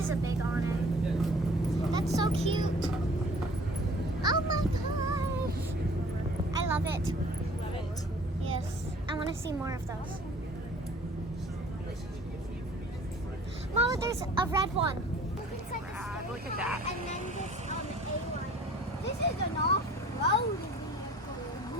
a big awning. That's so cute. Oh my gosh. I love it. Love it. Yes. I want to see more of those. Mama, there's a red one. It's like Rad, look at that. And then this A-line. This is an off-road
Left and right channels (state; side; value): normal; both; correlation 0.50